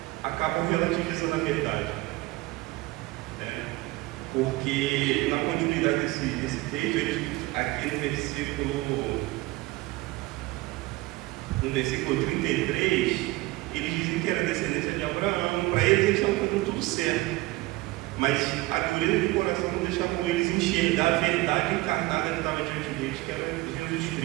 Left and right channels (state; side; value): quieter; left; 20.3 dB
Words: acabam relativizando a verdade. Porque na continuidade desse texto, aqui no versículo 33, eles dizem que era descendência de Abraão. Para eles estavam fazendo tudo certo, mas a dureza do coração não deixava eles enxergar a verdade encarnada que estava diante deles, que era Jesus